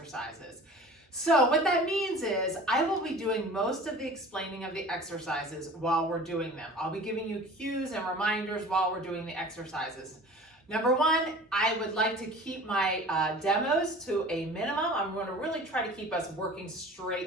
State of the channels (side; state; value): both; normal; correlation 0.42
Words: So what that means is I will be doing most of the explaining of the exercises while we're doing them. I'll be giving you cues and reminders while we're doing the exercises. Number 1, I would like to keep my demos to a minimum. I'm going to really try to keep us working